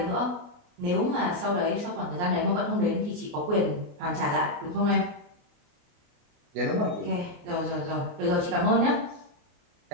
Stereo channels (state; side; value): late; left; 28 ms